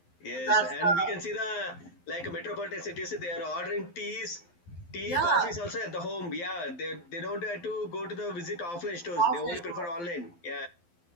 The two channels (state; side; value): late; right; 12 ms